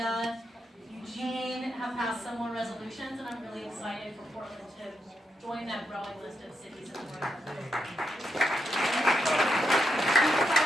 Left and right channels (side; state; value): both; normal; correlation 0.82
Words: Eugene have passed similar resolutions, and I'm really excited for Portland to join that growing list of cities in the world.